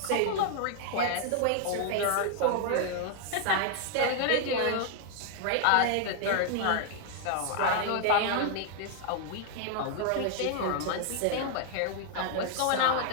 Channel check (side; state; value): both; different; correlation 0.00